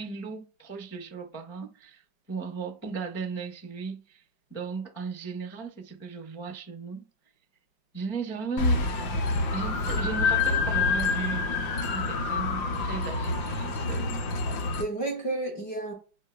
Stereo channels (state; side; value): late; right; 5.6 ms